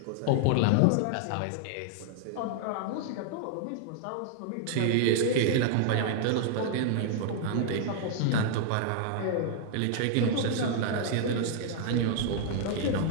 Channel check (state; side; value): different; both; correlation -0.01